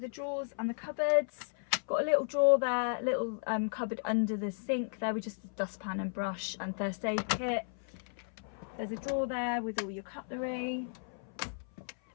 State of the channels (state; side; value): silent; right; 55 dB below the other